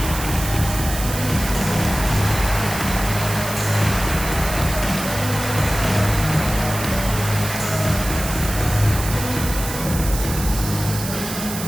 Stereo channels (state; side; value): noise; right; hiss, 8 dB below the sound